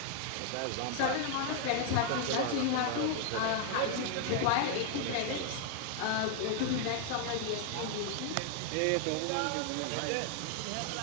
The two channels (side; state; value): both; different; correlation 0.00